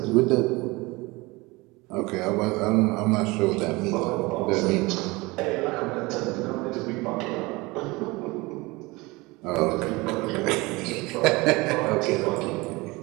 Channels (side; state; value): left; quieter; 23.3 dB